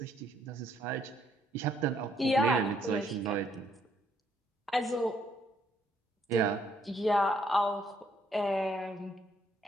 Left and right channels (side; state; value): both; normal; correlation 0.69